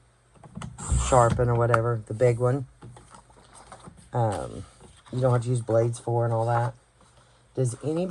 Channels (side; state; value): both; identical; correlation 1.00